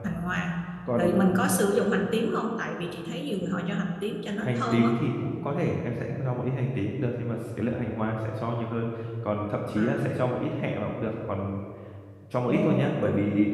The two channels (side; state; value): both; identical; correlation 1.00